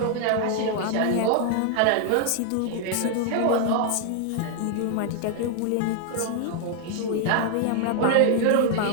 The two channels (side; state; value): both; different; correlation 0.00